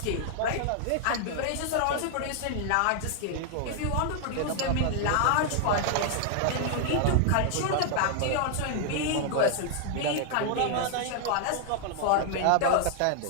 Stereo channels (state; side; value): different; both; correlation 0.00